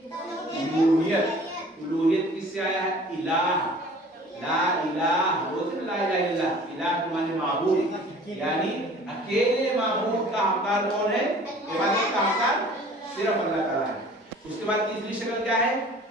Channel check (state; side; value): normal; both; correlation 0.48